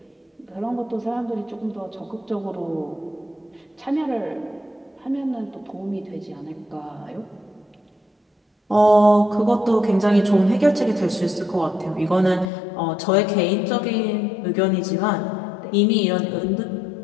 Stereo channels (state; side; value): drops out; right; at 12.5 s